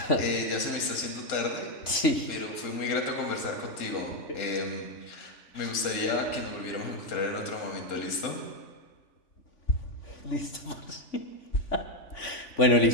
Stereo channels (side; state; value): right; late; 3.5 ms